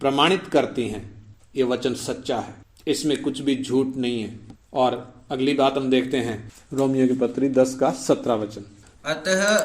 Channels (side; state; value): both; identical; correlation 1.00